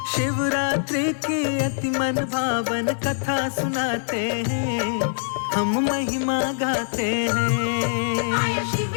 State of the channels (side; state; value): right; silent; digital silence